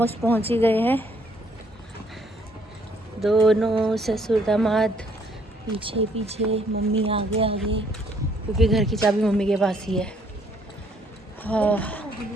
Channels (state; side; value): normal; both; correlation 0.65